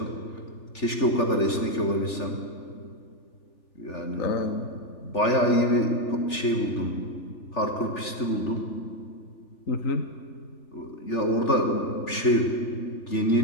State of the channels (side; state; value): right; late; 3.4 ms